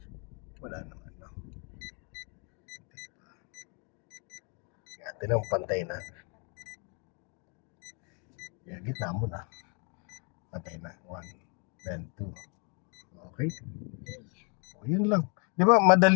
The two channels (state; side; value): quieter; right; 35.6 dB